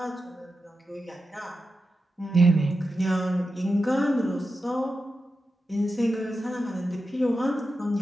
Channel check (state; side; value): normal; both; correlation 0.90